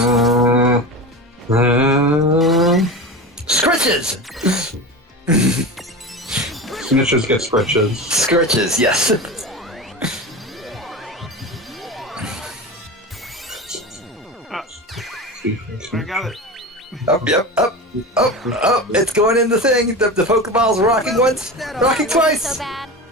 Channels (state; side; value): normal; both; correlation 0.27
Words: Scritches! Snitches get scritches. Scritches, yes. I got it. Up, yep, up, it's going in the thing. The Pokeball's rocking once, rocking twice. So bad.